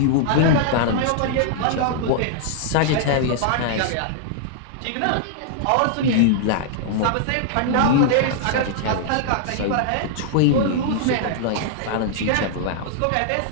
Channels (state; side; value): different; both; correlation -0.01